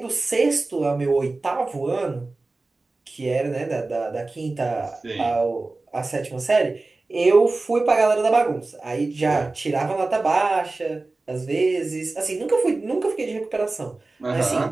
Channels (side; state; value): left; quieter; 3.4 dB